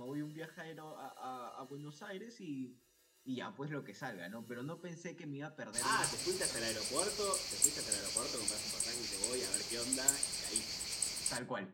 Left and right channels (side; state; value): both; identical; correlation 1.00